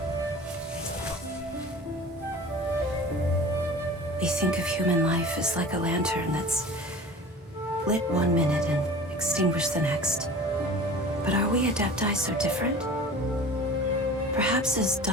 We think of human life as like a lantern that's lit one minute and extinguished the next. But are we adepti so different? Perhaps as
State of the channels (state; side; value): normal; both; correlation 0.40